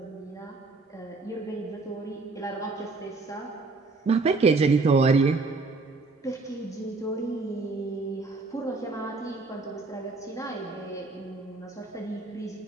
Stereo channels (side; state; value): left; quieter; 3.7 dB